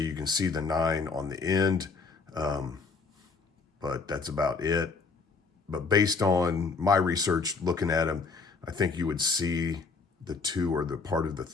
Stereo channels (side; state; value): right; quieter; 4.5 dB